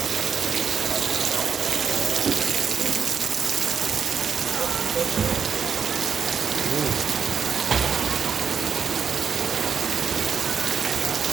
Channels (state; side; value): quieter; left; 6.7 dB